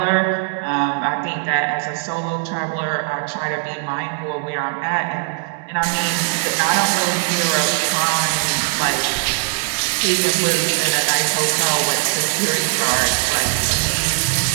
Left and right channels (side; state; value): left; silent; digital silence